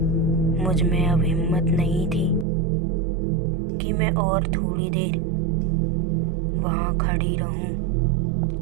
मुझ में अब हिम्मत नहीं थी कि मैं और थोड़ी देर वहाँ खड़ी रहूं।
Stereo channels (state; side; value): drops out; left; at 2.5 s